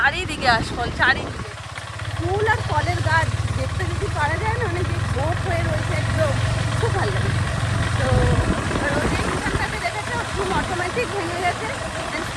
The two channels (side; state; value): both; identical; correlation 1.00